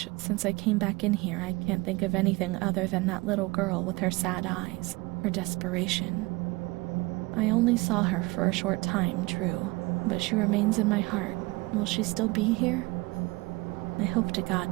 since I came back in here I can't think of anything other than that little girl with her sad eyes, her desperation. I only saw her for a short time, true, but she remains in my heart. Will she still be here? I hope to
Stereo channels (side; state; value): left; quieter; 23.7 dB